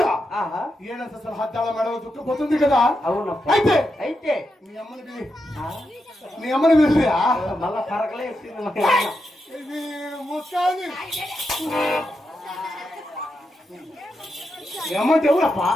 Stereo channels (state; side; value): normal; both; correlation 0.86